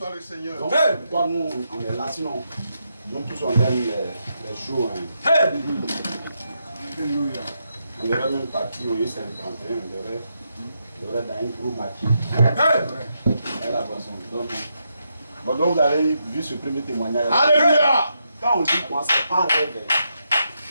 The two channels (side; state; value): both; inverted; correlation -0.82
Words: le Seigneur. Donc, pourquoi nous, on est là, sinon, nous tous on aime les jours. Hein. Alléluia. On devrait même partir au U51, on devrait dans un gros maquis. Et la boisson. Donc vous avez vu ce premier témoignage. Alléluia. Quand on dit quoi, c'est pas un rêve.